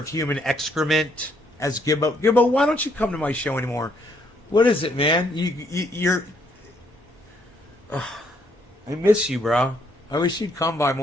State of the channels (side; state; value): both; normal; correlation 0.70